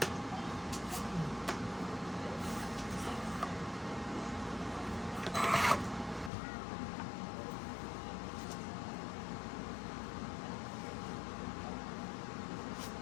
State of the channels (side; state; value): right; drops out; at 6.3 s